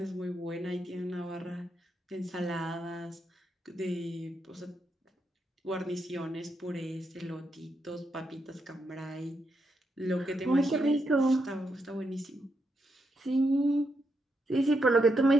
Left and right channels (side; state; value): both; normal; correlation 0.81